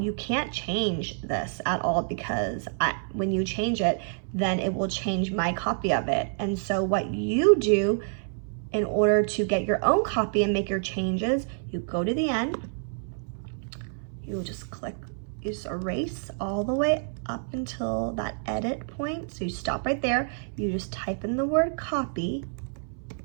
you can't change this at all, because when you change it, then it will change my copy of it. And so what you do in order to get your own copy and make your changes, you go to the end, you just click, you just erase all the way up until that edit point. So you stop right there, you just type in the word copy,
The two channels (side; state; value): left; silent; 59 dB below the other